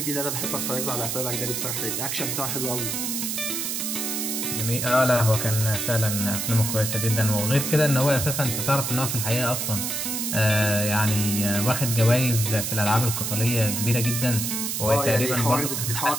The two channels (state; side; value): noise; right; hiss, 2 dB below the sound